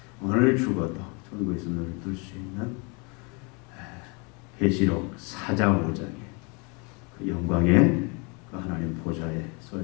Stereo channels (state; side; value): quieter; right; 31.6 dB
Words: 오늘 죽어도 천국에서 눈을 뜰 수 있는 계시록 4장 5장의 그 영광의 그 하나님 보좌에 설